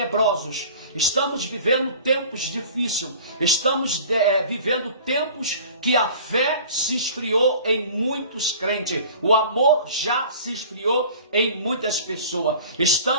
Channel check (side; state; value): both; inverted; correlation -0.43